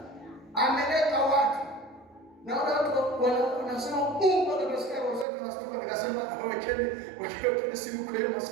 ameleta watu." Na watu wanasema Mungu atasikia wazazi tunasema, nikasema wekeni simu kwa hiyo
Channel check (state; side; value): drops out; left; at 5.2 s